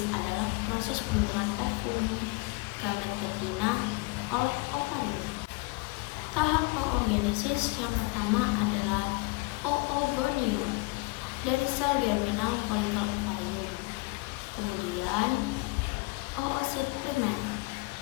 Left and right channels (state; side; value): quieter; right; 25.8 dB